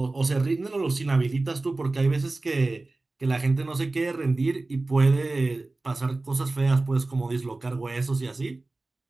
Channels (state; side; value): quieter; left; 3.2 dB